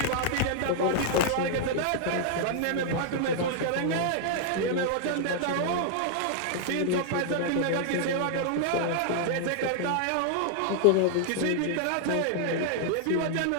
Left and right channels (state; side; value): different; both; correlation -0.01